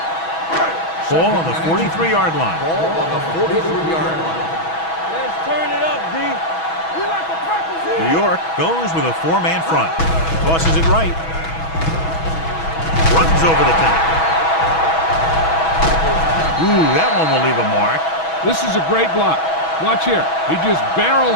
Ball on the 43-yard line. Ball on the 43-yard line. Let's turn it up, D. We like to practice here. New York goes with a 4-man front. Tosses it right. Runs over the tackle. Ooh, that one will leave a mark. This is a great block. Watch here. He just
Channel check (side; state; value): right; late; 6.2 ms